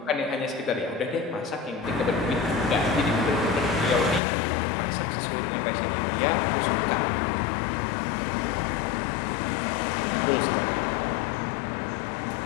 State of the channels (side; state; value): right; drops out; at 4.2 s